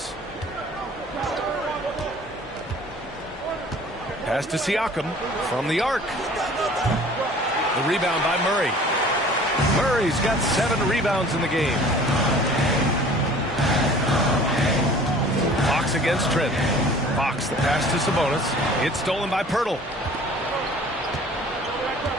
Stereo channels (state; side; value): normal; both; correlation 0.48